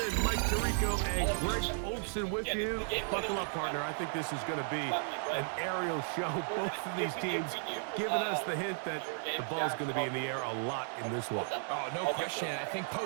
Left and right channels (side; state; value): left; silent; 55 dB below the other